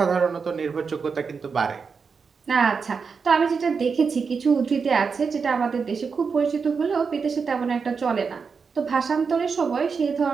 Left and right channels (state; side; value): quieter; left; 5.4 dB